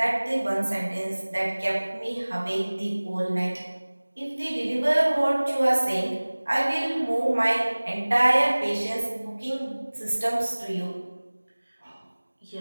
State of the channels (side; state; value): both; inverted; correlation -1.00